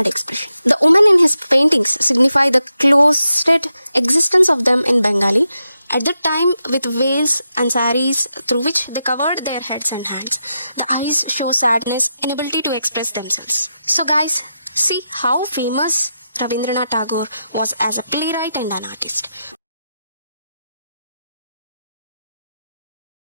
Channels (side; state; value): both; inverted; correlation -0.86